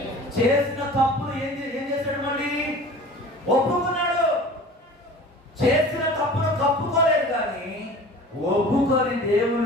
చేసిన తప్పులు ఏం చేశాడు? మళ్ళీ ఒప్పుకున్నాడు. చేసిన తప్పును కప్పుకోలేదు, కానీ ఒప్పుకొని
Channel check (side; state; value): both; normal; correlation 0.41